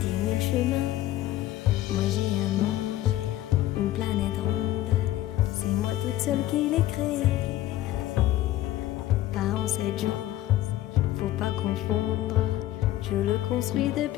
le chemin. Moi j'ai un monde, une planète ronde, c'est moi toute seule qui l'ai créée. Pas en 7 jours, faut pas confondre, je le construis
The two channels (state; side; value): quieter; right; 14.5 dB